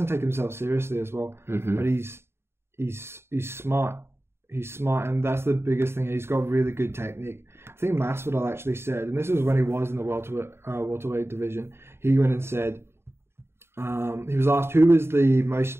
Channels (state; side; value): late; left; 0.12 ms